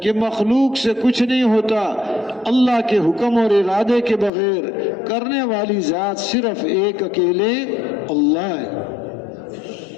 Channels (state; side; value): drops out; right; at 4.3 s